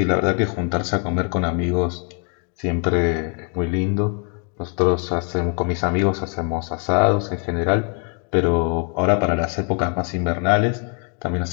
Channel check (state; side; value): quieter; right; 40.0 dB